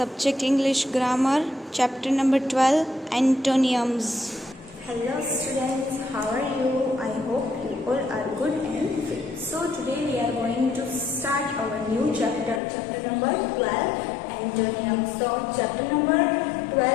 English Grammar, Chapter number 12, Antonyms. Hello students, how are you? I hope you all are good and fit. So today we are going to start our new chapter, chapter number 12, Antonyms. So chapter number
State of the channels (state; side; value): drops out; right; at 12.6 s